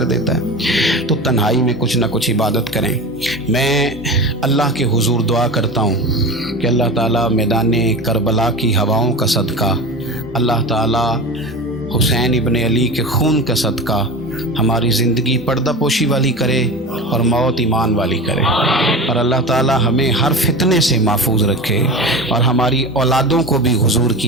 دیتا ہے. تو تنہائی میں کچھ نہ کچھ عبادت کریں. میں اللہ کے حضور دعا کرتا ہوں کہ اللہ تعالیٰ میدان کربلا کی ہواؤں کا صدقہ، اللہ تعالیٰ حسین ابن علی کے خون کا صدقہ ہماری زندگی پردہ پوشی والی کرے اور موت ایمان والی کرے، اور اللہ تعالیٰ ہمیں ہر فتنے سے محفوظ رکھے اور ہماری اولادوں کو بھی حضور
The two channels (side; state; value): both; normal; correlation 0.30